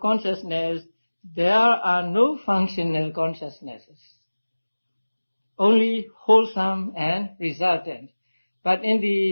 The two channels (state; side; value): inverted; both; correlation -1.00